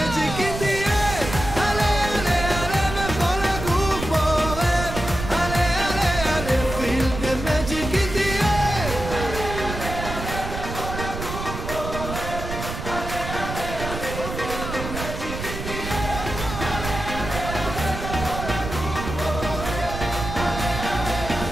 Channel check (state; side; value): noise; right; rumble, 7 dB below the sound